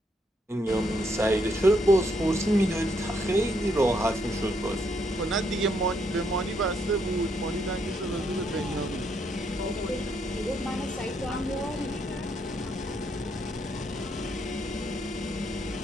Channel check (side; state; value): both; normal; correlation 0.74